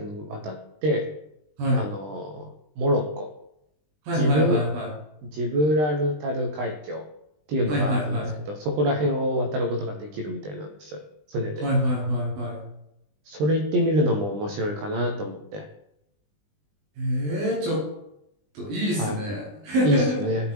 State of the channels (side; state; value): left; late; 20 ms